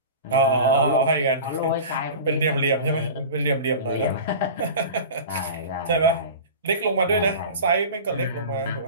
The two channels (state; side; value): inverted; both; correlation -0.35